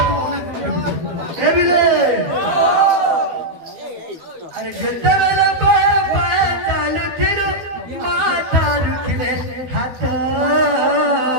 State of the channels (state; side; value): late; left; 12 ms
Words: ए बिले अरे जितने बेले पाए पाए चालू थिरो माता रुखले हाथ